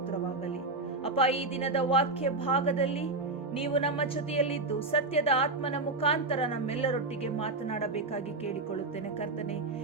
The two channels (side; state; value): left; quieter; 3.3 dB